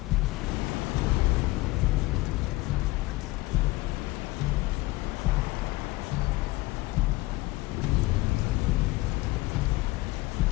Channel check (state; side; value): quieter; right; 20.5 dB